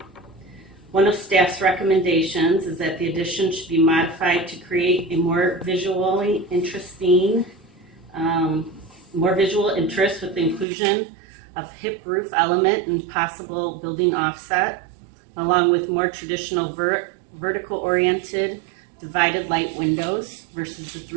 One of staff's recommendations is that the addition should be modified to create a more visually interesting, more visual interest with the inclusion of hip roof element and possible building offset, along with more traditional vertical oriented divided light windows versus the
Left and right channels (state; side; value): drops out; left; at 10.7 s